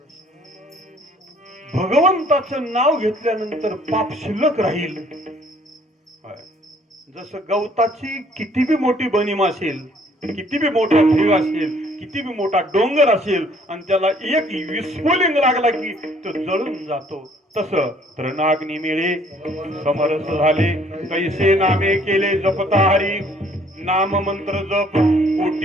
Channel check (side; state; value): both; normal; correlation 0.60